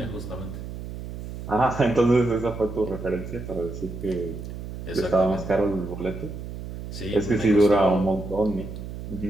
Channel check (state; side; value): noise; right; hum, 9 dB below the sound